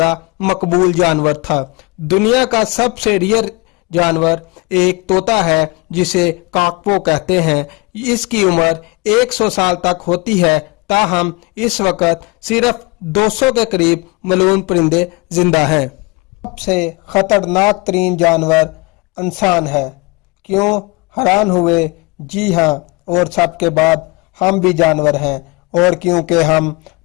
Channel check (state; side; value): quieter; right; 26.6 dB